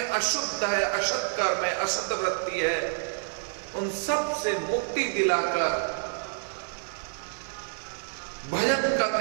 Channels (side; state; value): left; silent; digital silence